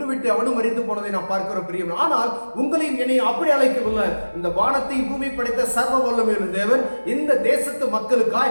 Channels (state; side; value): inverted; both; correlation -1.00